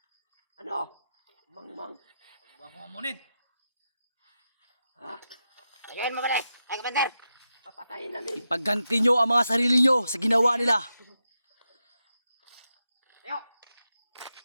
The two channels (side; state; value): both; inverted; correlation -0.88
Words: Ano? Mangmang. Huwag mo akong amunin. Ha? Tagayin mo pala. Ay, Commander. Papatayin namin. Pagganti nyo ang mga sarili nyo sa ginawa nila. Tayo.